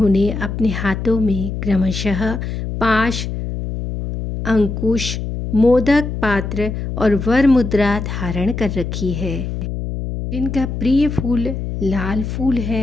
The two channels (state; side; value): noise; left; hum, 5 dB below the sound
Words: अपने हाथों में क्रमशः पाश, अंकुश, मोदक पात्र और वर मुद्रा धारण कर रखी है, जिनका प्रिय फूल लाल फूल